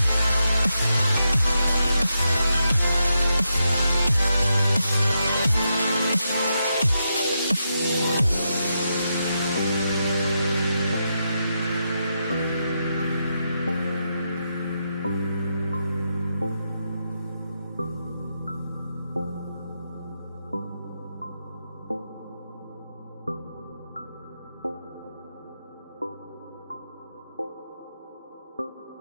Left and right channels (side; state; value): both; inverted; correlation -0.84